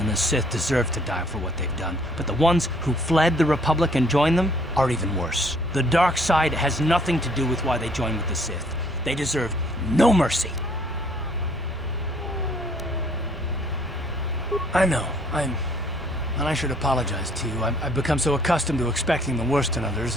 the Sith deserve to die for what they've done, but the ones who fled the Republic and joined them are even worse. The dark side has nothing to do with why they joined with the Sith. They deserve no mercy. I know, and I should apologize to you. I've become so accustomed to expecting the worst in others,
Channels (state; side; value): normal; both; correlation 0.62